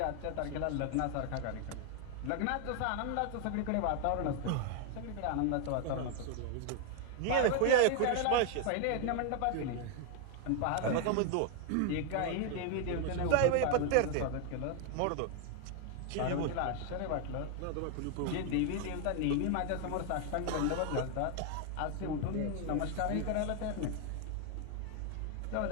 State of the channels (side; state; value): both; different; correlation 0.00